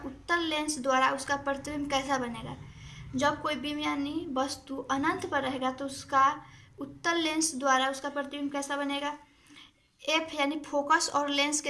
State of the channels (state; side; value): identical; both; correlation 1.00